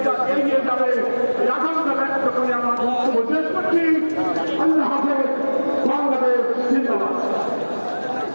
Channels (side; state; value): both; inverted; correlation -1.00